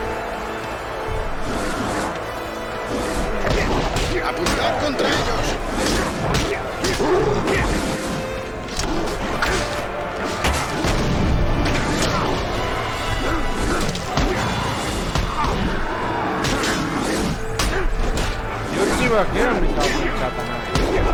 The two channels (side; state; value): both; identical; correlation 1.00